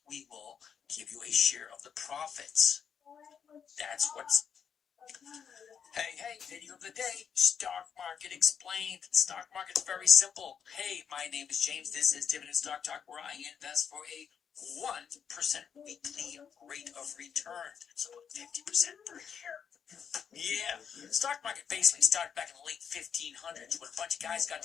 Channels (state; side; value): quieter; right; 7.4 dB